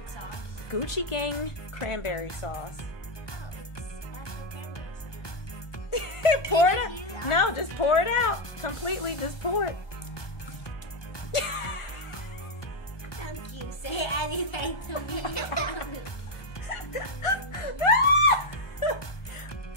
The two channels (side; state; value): right; late; 1.2 ms